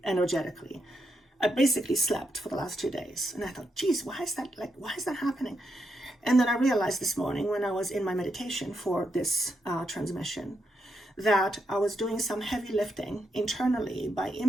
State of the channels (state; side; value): normal; both; correlation 0.82